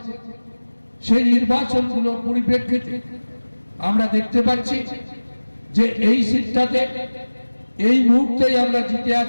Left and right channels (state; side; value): inverted; both; correlation -1.00